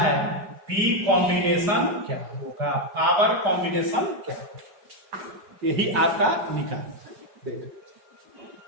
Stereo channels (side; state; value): left; late; 4.9 ms